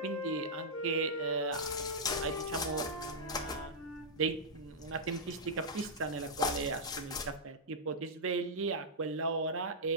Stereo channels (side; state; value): both; normal; correlation -0.10